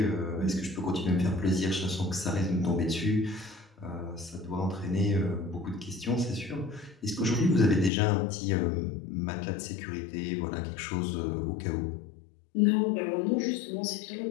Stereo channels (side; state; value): right; drops out; at 7.9 s